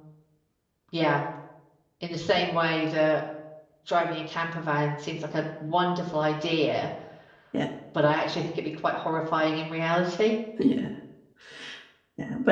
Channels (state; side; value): identical; both; correlation 1.00